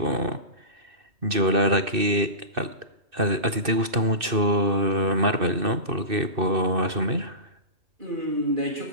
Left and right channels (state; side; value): late; left; 2.6 ms